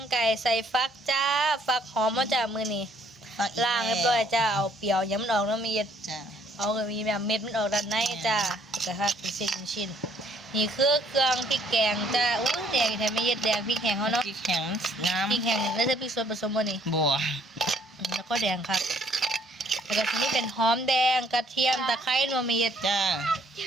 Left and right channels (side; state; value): both; normal; correlation 0.64